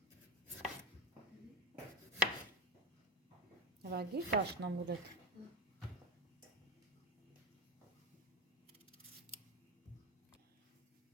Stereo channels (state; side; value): normal; both; correlation 0.16